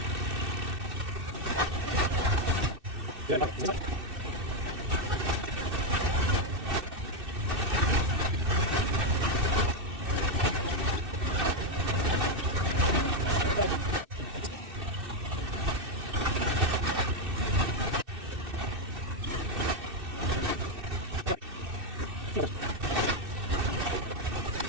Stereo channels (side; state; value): left; late; 2.6 ms